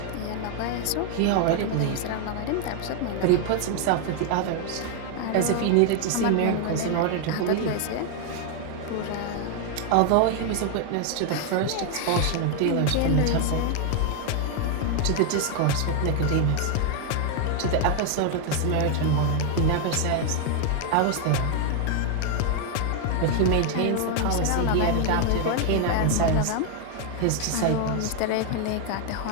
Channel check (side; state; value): both; different; correlation 0.00